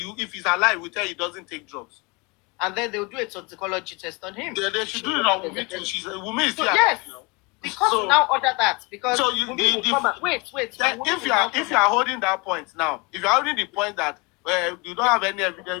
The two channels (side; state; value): right; quieter; 28.0 dB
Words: if he's alive, we tell he doesn't take drugs? And then they'll do a toxicology test on him. They should do it on Wumi too. Wumi is So, here. yes, because So- now order that because So you- Wumi will the- come and- wait. Then Wumi if will you now are come and- holding that point now, if you are holding the point that you don't have any